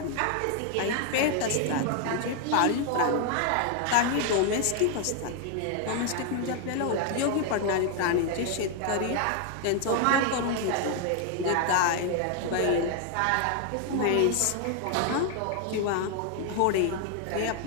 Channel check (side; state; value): both; different; correlation 0.00